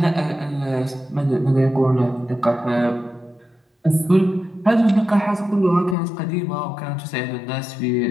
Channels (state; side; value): drops out; right; at 6.0 s